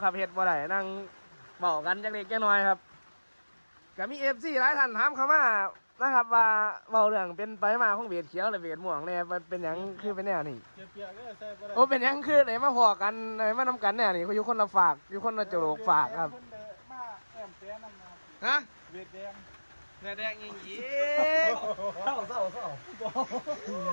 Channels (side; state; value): both; inverted; correlation -1.00